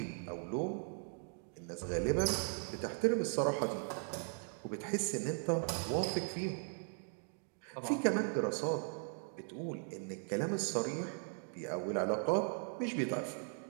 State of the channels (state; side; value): silent; left; 52 dB below the other